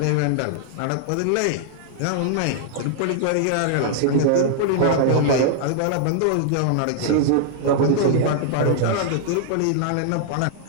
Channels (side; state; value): both; different; correlation -0.01